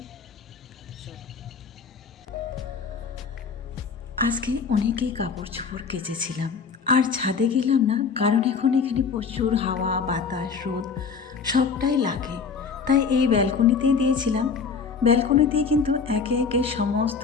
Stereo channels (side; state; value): right; quieter; 5.6 dB